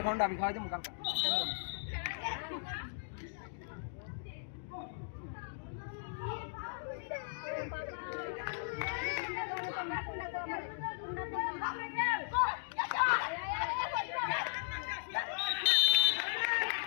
ठंडा भी खावा दे मुकाम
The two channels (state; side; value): silent; right; digital silence